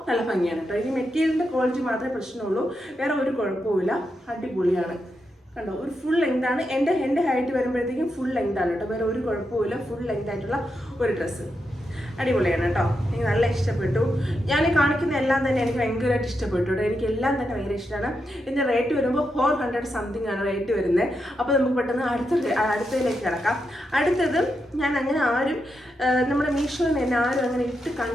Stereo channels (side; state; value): both; normal; correlation 0.85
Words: നല്ല ഭംഗിയാണ് കേട്ടോ. ഈ മെറ്റീരിയലിൻ്റെ ക്വാളിറ്റി മാത്രമേ പ്രശ്നമുള്ളൂ, വേറെ ഒരു കുഴപ്പമില്ല. അടിപൊളിയാണ്. കണ്ടോ, ഒരു ഫുൾ ലെങ്ത് ആണ്. എൻ്റെ ഹൈറ്റ് വരുമ്പോഴത്തേക്കും ഫുൾ ലെങ്ത് ആണ് കേട്ടോ. വേറെ ഒരു കുഴപ്പമില്ല. ഫുൾ ലെങ്ത് ആയിട്ടുള്ള ഒരു ഡ്രസ്സ് അടിപൊളിയാണ് കേട്ടോ. എനിക്ക് നല്ല ഇഷ്ടപ്പെട്ടു. ഞാൻ കാണിക്കുന്ന എല്ലാം തന്നെ എനിക്ക് ഭയങ്കരമായിട്ട് ഇഷ്ടപ്പെട്ടു കേട്ടോ. എനിക്ക് എല്ലാം തന്നെ ഭയങ്കര ഇഷ്ടമാണ്. ഇതിൻ്റെ റേറ്റ് വരുമ്പോൾ 400 സംതിങ് ആണ് റേറ്റ് വരുന്നത്. അപ്പോൾ നമുക്ക് പെട്ടെന്ന് അടുത്തതിലേക്ക് കിടക്കാം. അടുത്തത് ഞാൻ അങ്ങനെ നമ്മുടെ മീഷോയിൽ നിന്ന് തന്നെ ആരും അങ്ങനെ ഇട്ട്